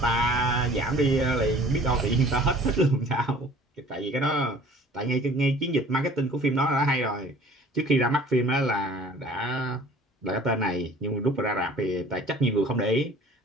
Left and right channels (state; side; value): normal; both; correlation 0.50